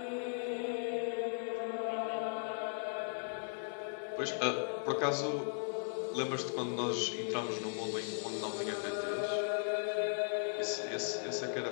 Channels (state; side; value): silent; right; 53 dB below the other